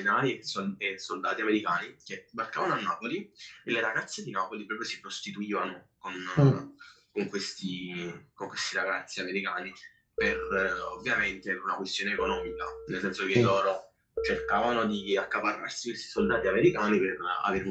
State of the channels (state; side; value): identical; both; correlation 1.00